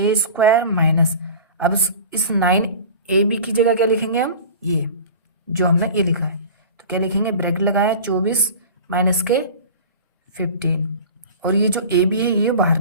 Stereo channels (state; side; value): inverted; both; correlation -0.38